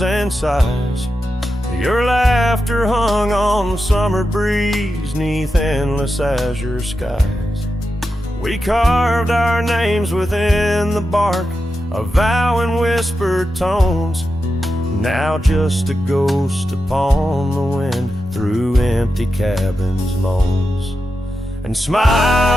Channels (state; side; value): normal; both; correlation 0.89